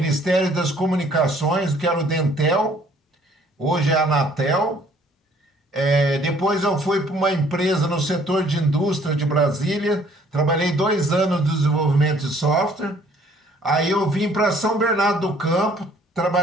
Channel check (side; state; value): both; normal; correlation 0.59